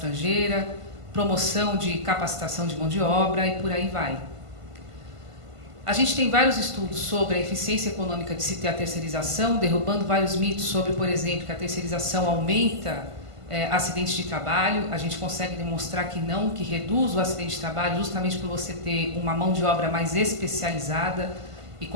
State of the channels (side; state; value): left; late; 1.5 ms